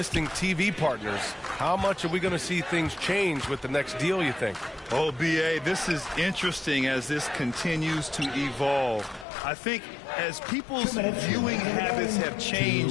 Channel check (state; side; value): drops out; right; at 9.2 s